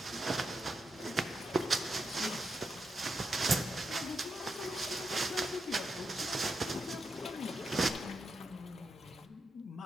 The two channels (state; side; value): normal; both; correlation 0.85